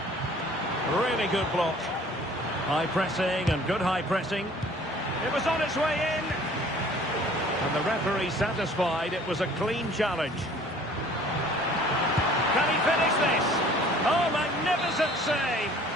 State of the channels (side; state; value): both; normal; correlation 0.51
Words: Really good block. High pressing and good high pressing. It was on its way in. And the referee satisfied it was a clean challenge. Can he finish this? Oh, magnificent save!